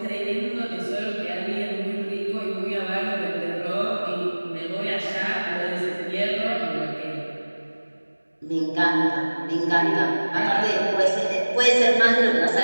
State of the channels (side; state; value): both; inverted; correlation -1.00